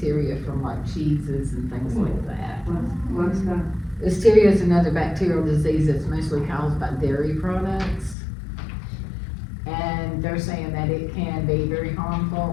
from like cheeses and things like that. What's that? Listeria is another bacterial disease that's mostly caused by dairy products. And they're saying that it can be very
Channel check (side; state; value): right; drops out; at 8.2 s